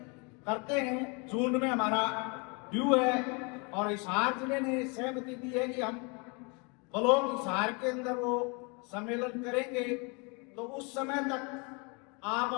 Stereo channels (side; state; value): right; quieter; 31.8 dB